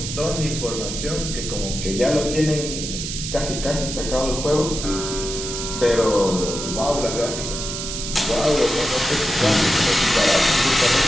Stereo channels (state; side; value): noise; right; hiss, 6 dB below the sound